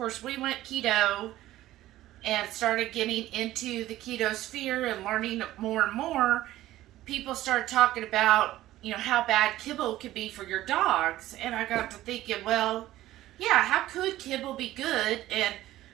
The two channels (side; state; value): left; quieter; 15.0 dB